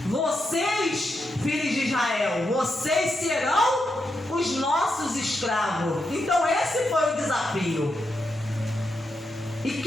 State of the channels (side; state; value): both; normal; correlation 0.84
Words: vocês, filhos de Israel, vocês serão os nossos escravos. Então esse foi o desafio. E